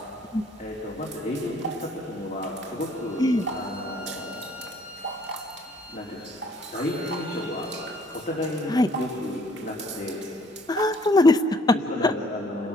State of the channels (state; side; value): normal; both; correlation 0.61